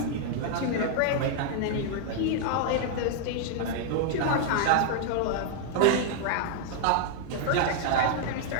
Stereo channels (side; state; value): both; different; correlation -0.01